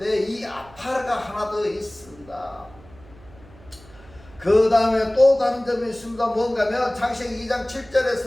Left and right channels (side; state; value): right; noise; hum, 23 dB below the sound